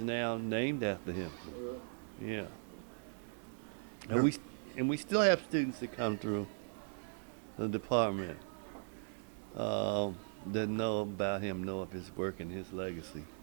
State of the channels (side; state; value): left; silent; 52 dB below the other